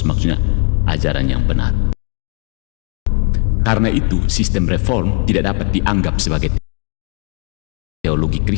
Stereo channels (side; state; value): right; quieter; 40.0 dB